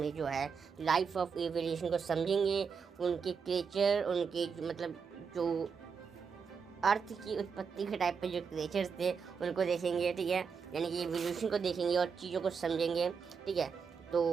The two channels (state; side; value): quieter; left; 6.0 dB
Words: जो है लाइफ ऑफ एवोल्यूशन को समझेंगे, उनके क्रिएचर, उनके मतलब जो अर्थ की उत्पत्ति के टाइप पे जो क्रिएचर्स थे उनको देखेंगे। ठीक है, यानी कि एवोल्यूशन को देखेंगे और चीज़ों को समझेंगे। ठीक है, तो